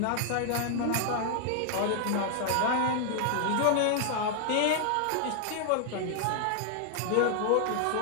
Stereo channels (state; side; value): different; both; correlation -0.01